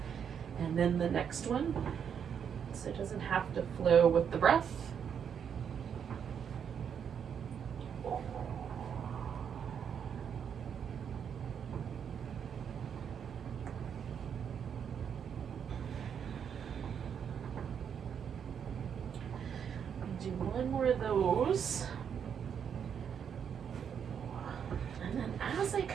and then the next one, so it doesn't have to flow with the breath. Do one more of those. And then as I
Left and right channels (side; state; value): left; quieter; 7.8 dB